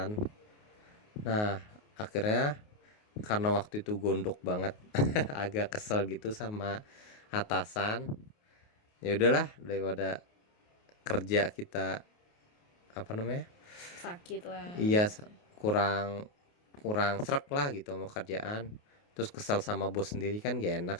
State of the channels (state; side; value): late; right; 28 ms